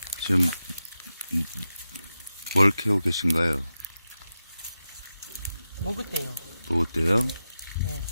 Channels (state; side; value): inverted; both; correlation -0.91